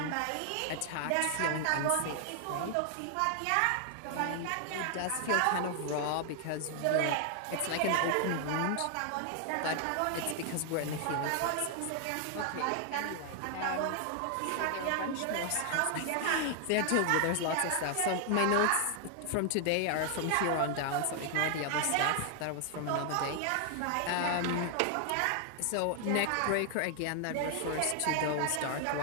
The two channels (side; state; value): both; different; correlation 0.00